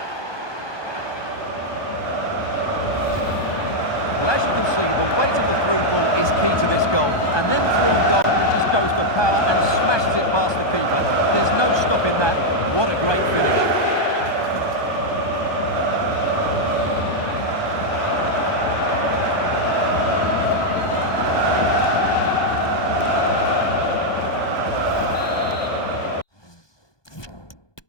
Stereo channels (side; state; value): right; late; 1.2 ms